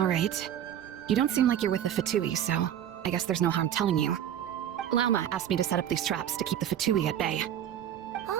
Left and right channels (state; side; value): quieter; left; 10.3 dB